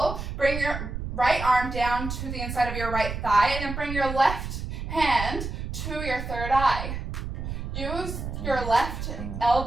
Bring your right arm down to the inside of your right thigh and then bring your left hand to your third eye. Use your left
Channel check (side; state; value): right; noise; rumble, 6 dB below the sound